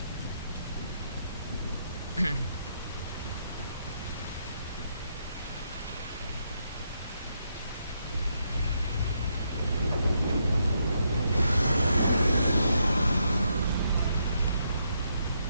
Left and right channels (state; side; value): inverted; both; correlation -0.78